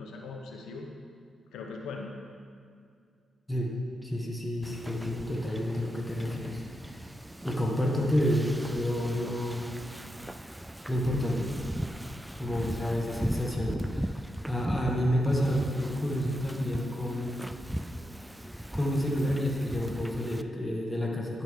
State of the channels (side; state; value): both; normal; correlation 0.86